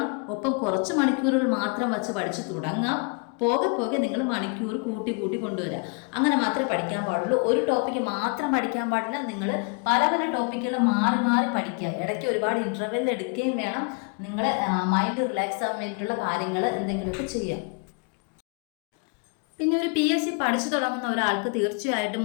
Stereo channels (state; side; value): quieter; right; 34.2 dB